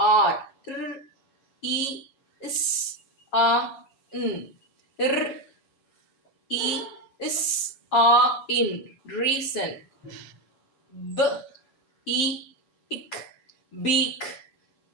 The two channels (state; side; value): late; right; 7.3 ms